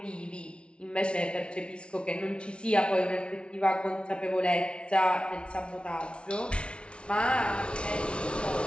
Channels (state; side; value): late; right; 0.058 ms